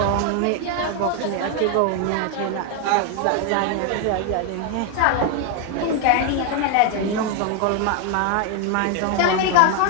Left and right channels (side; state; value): both; different; correlation 0.01